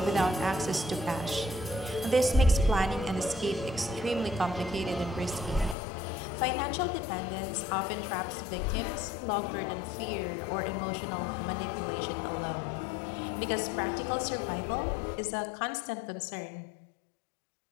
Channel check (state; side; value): drops out; right; at 5.8 s